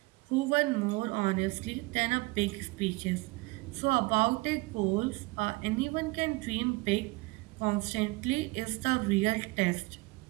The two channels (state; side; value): quieter; left; 24.4 dB